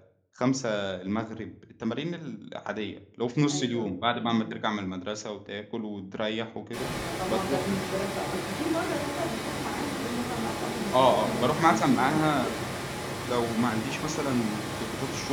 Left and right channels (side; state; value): both; identical; correlation 1.00